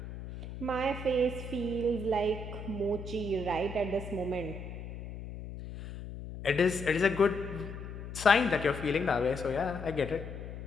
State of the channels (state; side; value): noise; left; hum, 10 dB below the sound